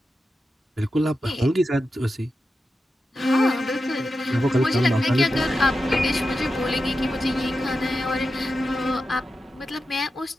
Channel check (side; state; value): both; normal; correlation 0.90